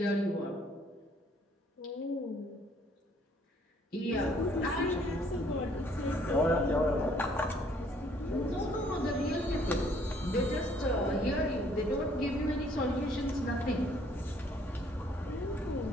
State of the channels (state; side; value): normal; both; correlation 0.62